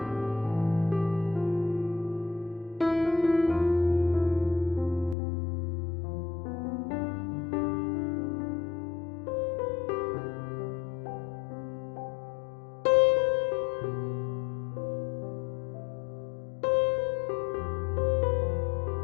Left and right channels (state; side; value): drops out; right; at 5.2 s